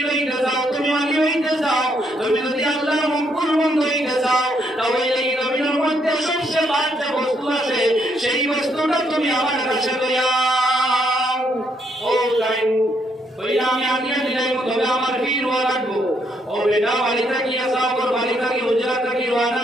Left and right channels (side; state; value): both; normal; correlation 0.74